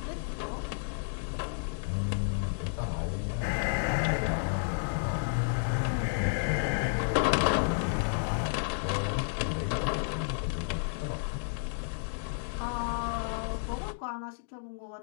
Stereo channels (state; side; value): silent; right; digital silence